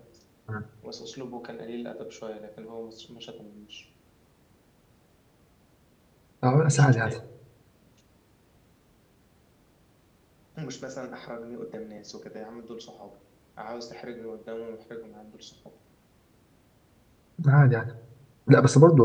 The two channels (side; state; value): both; identical; correlation 1.00